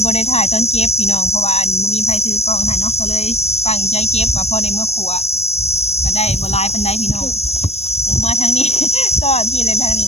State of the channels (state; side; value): late; right; 0.31 ms